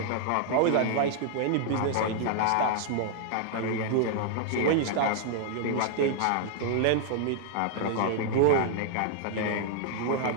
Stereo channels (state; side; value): different; both; correlation -0.01